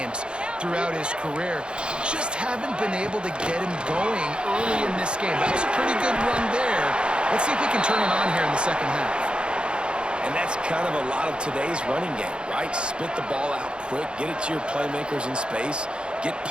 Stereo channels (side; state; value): left; late; 0.054 ms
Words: throughout his career. Just haven't been able to get him going early in this game. That was a pretty good run there. Let's see if he can turn it on here in the second half. And that's kind of a lot of today's running game, right? Spit the ball out quick, get it to your playmakers in space, get